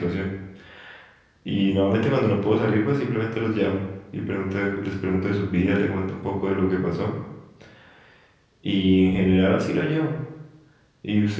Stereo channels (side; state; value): both; identical; correlation 1.00